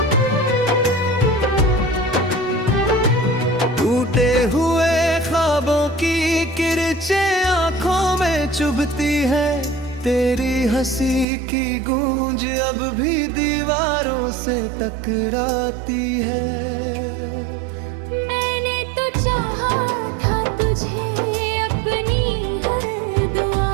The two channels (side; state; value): left; drops out; at 11.2 s